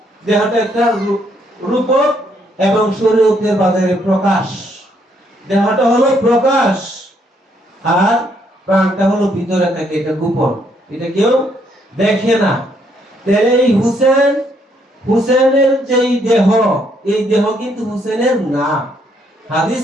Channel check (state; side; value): normal; both; correlation 0.71